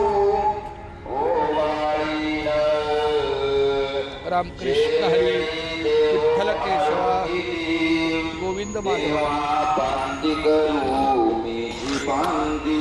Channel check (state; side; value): identical; both; correlation 1.00